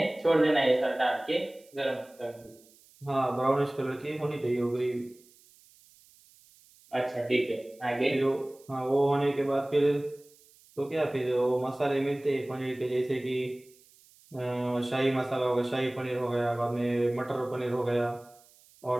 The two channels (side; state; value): right; noise; hiss, 28 dB below the sound